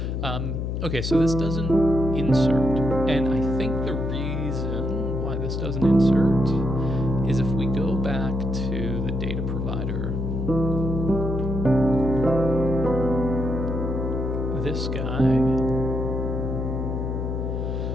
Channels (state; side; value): noise; left; hum, 2 dB below the sound